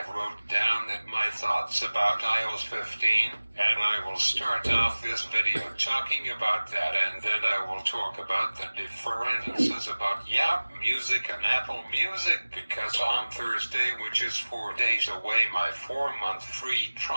wrote down that my thoughts about iOS 15, and I will start off this video talking about that, and then I will talk about the differences about Music and Apple Music, because on Thursday, which is 4 days away, my 4-month free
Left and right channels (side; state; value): both; inverted; correlation -1.00